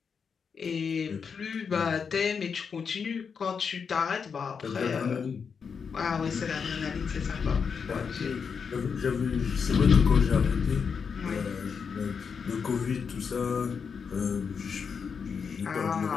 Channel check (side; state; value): right; quieter; 6.1 dB